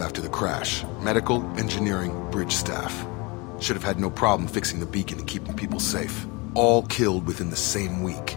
after the crash. Medical, engineering, bridge staff. Should have had no problem fixing the beacon and keeping people safe. All killed within the same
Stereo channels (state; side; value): quieter; right; 27.1 dB